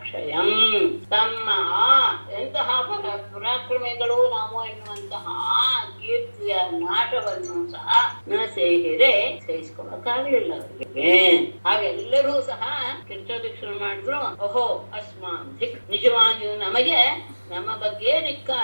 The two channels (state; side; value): inverted; both; correlation -1.00